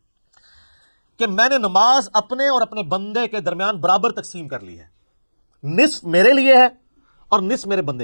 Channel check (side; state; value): both; inverted; correlation -1.00